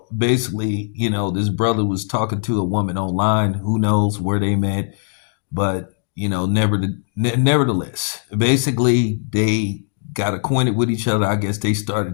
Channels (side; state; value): right; silent; 66 dB below the other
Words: basically, this brother was talking to a woman online. Who knows where they met, but nevertheless, basically, they got acquainted with each other. I guess they